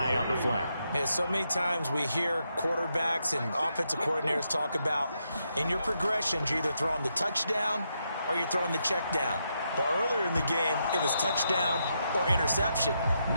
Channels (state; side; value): inverted; both; correlation -0.81